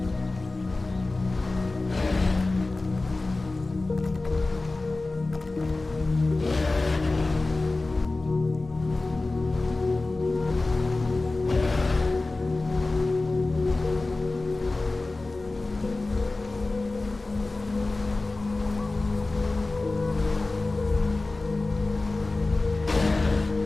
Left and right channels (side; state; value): right; quieter; 3.2 dB